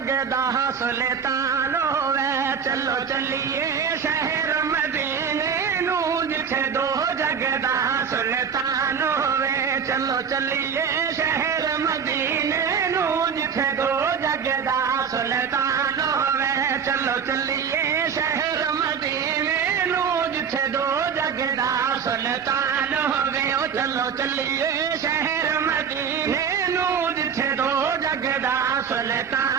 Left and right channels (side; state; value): left; quieter; 6.8 dB